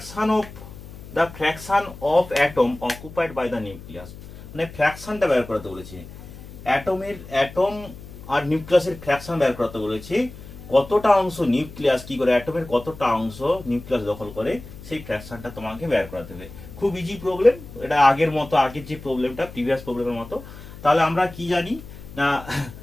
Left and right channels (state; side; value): noise; left; hum, 15 dB below the sound